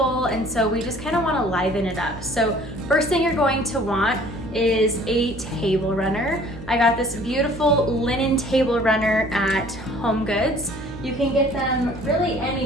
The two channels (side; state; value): right; noise; hum, 14 dB below the sound